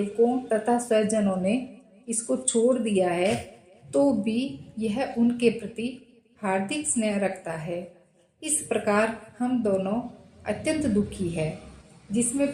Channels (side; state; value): both; identical; correlation 1.00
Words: तथा स्वजनों ने इसको छोड़ दिया है, तो भी यह उनके प्रति हार्दिक स्नेह रखता है। इस प्रकार हम दोनों अत्यंत दुखी है। जिसमें